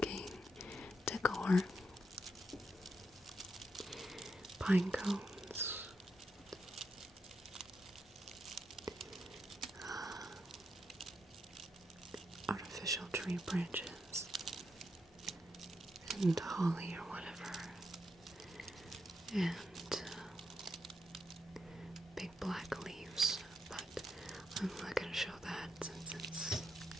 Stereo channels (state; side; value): normal; both; correlation 0.83